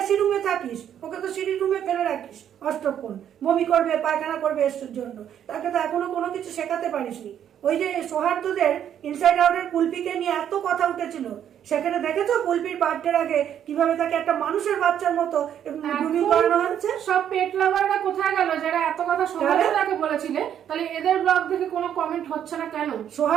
রুমে থাকিস, ওকে তো সিঁড়ি রুমে ফেলে রাখিস অষ্টক্ষণ, বমি করবে পায়খানা করবে এসের জন্য, তাকে তো এখনো কোনো কিছু শেখাতে পারিসনি। ওই যে সৌহার্দ্যদের ইনসাইড আউটের কুলপিকে নিয়ে এত কথা উঠেছিল, সেখানে দেখেছো কুলপির বার্থডের আগে কিভাবে তাকে একটা মানুষের বাচ্চার মতো গ্রুমিং করানো হচ্ছে। সব পেট লাভাররা কোথায় গেল যারা এত কথা সৌহার্দ্যকে বলেছিলে? তাহলে এদের ব্লগ দেখে কোনো কমেন্ট হচ্ছে না কেন?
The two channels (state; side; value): quieter; left; 9.7 dB